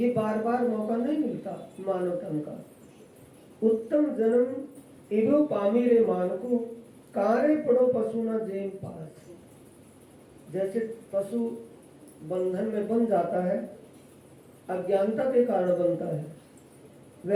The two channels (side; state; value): both; identical; correlation 1.00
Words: बार बार मौका नहीं मिलता मानव तन का। उत्तम जन्म एगो पामी रे मानखो कारे पड़ो पशु न जेम पास। जैसे पशु बंधन में बंध जाता है, अज्ञानता के कारण बनता है,